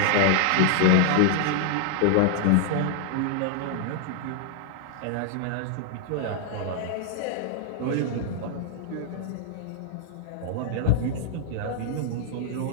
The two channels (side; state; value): both; different; correlation 0.00